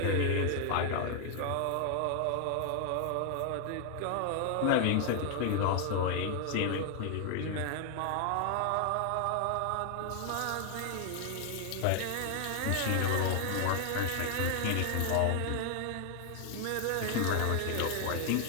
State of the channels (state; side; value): different; both; correlation 0.00